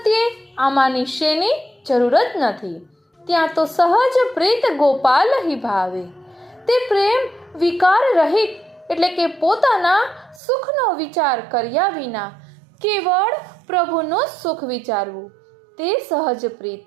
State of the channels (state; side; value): drops out; left; at 10.4 s